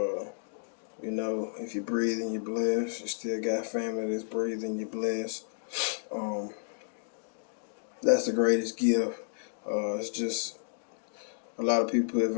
If you're breathing, you're blessed. You still got family that's breathing, you're blessed. Um, that's the greatest gift. It's just a lot of people put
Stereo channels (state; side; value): silent; right; digital silence